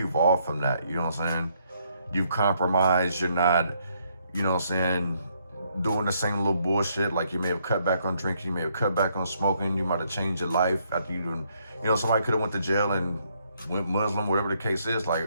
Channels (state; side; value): inverted; both; correlation -0.73